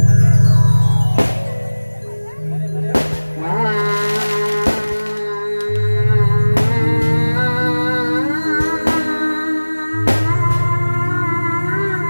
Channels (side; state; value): both; inverted; correlation -1.00